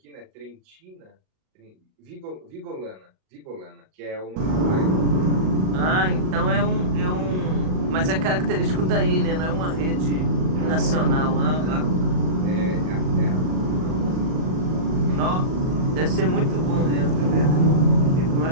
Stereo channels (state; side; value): late; left; 38 ms